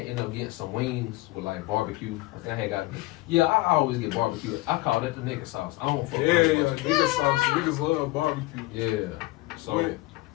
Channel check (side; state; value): right; quieter; 20.1 dB